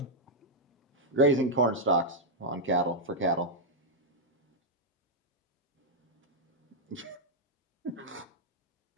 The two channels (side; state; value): both; normal; correlation -0.03